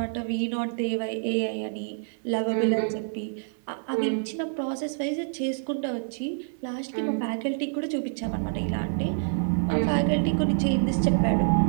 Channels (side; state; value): left; silent; digital silence